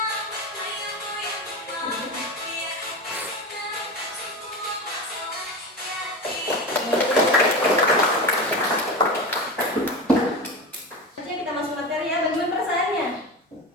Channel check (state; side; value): normal; both; correlation 0.24